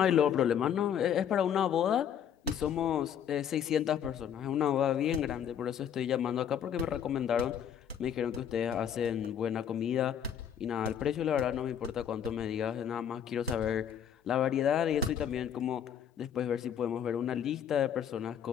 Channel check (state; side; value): quieter; right; 8.8 dB